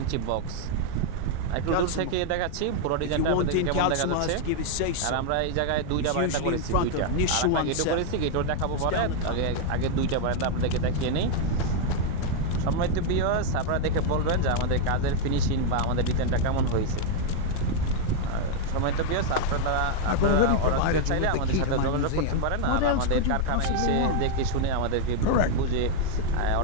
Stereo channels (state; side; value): different; both; correlation 0.00